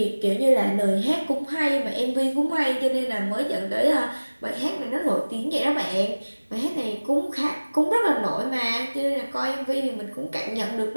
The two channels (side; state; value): both; inverted; correlation -1.00